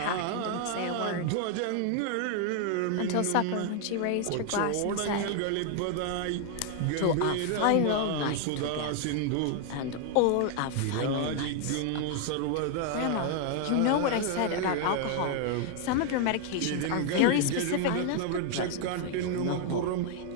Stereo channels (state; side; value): different; both; correlation 0.00